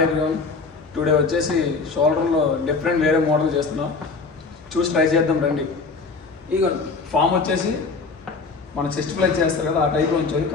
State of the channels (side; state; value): right; quieter; 4.3 dB